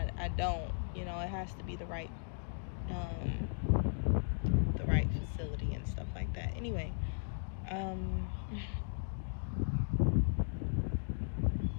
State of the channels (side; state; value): right; silent; digital silence